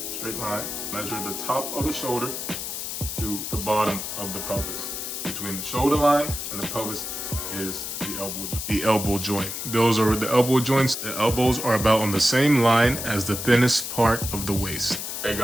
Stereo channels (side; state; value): left; noise; hiss, 5 dB below the sound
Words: straight line, measure the top of the shoulder to the bottom of the pelvis. Between the shoulder line and the pelvis is the elbow joint. Those are the elbow joints. The elbows are about on the same line as the thinnest part of the waist. Hey